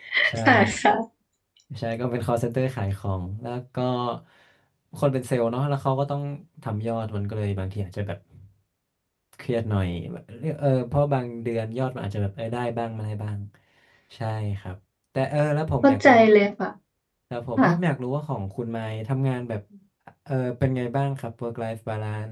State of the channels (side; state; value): both; identical; correlation 1.00